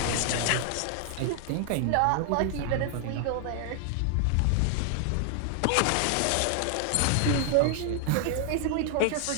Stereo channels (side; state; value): both; different; correlation 0.00